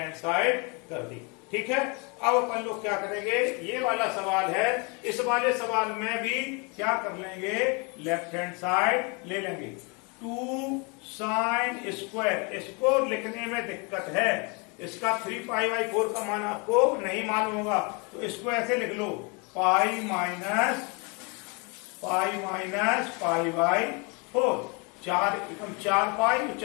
साइड कर दी। ठीक है, अब अपन लोग क्या करेंगे, ये वाला सवाल है, इस वाले सवाल में भी क्या कर लेंगे, लेफ्ट हैंड साइड ले लेंगे। 2 साइन स्क्वायर, इसको लिखने में दिक्कत है, इसका 3π/4 का मान आपको नहीं मालूम होगा, तो इसको ऐसे लिख लो, पाई माइनस π/4 4 पाई,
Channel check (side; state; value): right; quieter; 31.9 dB